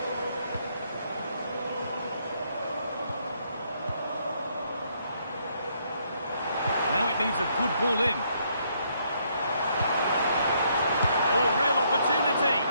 Now it needs a good ball in. Oh, real opportunity.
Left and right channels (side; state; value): both; inverted; correlation -0.71